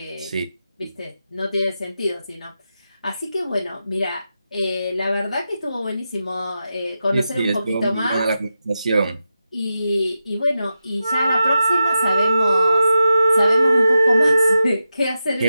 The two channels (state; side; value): inverted; both; correlation -0.90